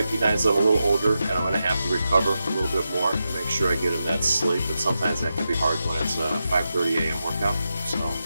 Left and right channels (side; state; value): both; inverted; correlation -0.88